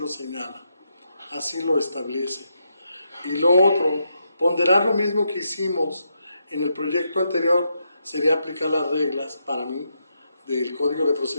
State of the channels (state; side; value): inverted; both; correlation -0.81